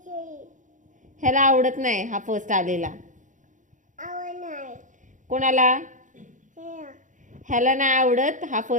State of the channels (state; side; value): late; left; 0.37 ms